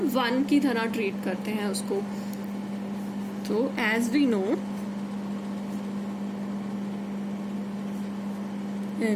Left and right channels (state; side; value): identical; both; correlation 1.00